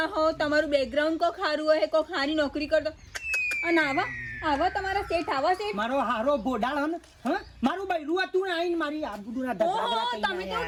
હો, તમારું બેકગ્રાઉન્ડ કોઈ ખારું હોય, કોઈ ખારી નોકરી કરતો. અને આવા તમારા શેઠ આવા શેઠ. મારો હારો બોડાળ હન, હ મારું બૈરું હતું ને આઈને મારી આબરૂના ધગડા તમે તો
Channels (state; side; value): identical; both; correlation 1.00